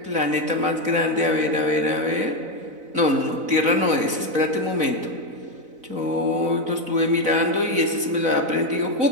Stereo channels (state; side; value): late; left; 4.0 ms